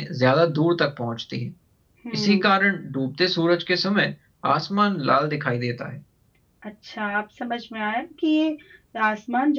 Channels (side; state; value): both; identical; correlation 1.00